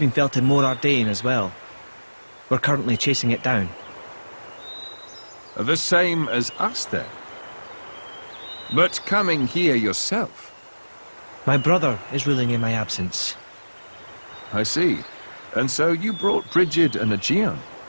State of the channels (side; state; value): both; inverted; correlation -1.00